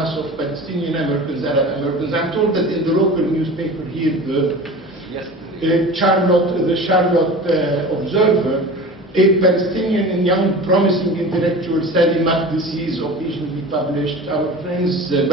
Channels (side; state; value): both; normal; correlation 0.36